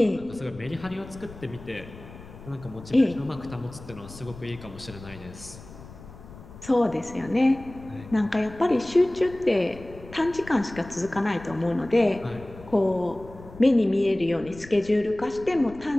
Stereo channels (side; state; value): left; noise; rumble, 17 dB below the sound